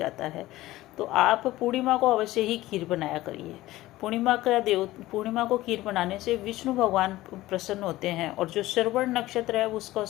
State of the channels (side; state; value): right; quieter; 16.9 dB